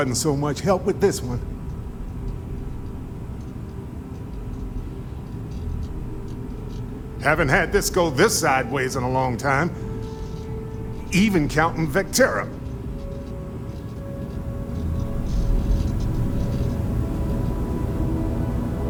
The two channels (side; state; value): both; identical; correlation 1.00